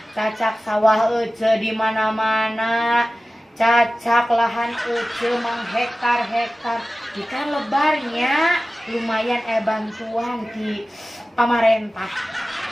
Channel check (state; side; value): normal; both; correlation 0.96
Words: cacak sawah ece di mana-mana, cacak lahan ece menghektar-hektar. Ikan lebarnya lumayan bantuan di pamarentah.